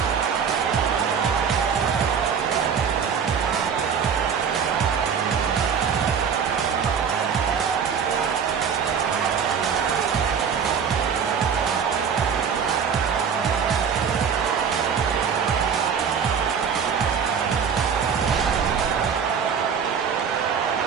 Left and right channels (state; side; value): quieter; left; 6.9 dB